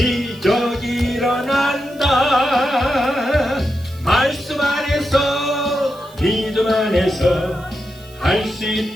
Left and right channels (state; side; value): noise; right; hiss, 25 dB below the sound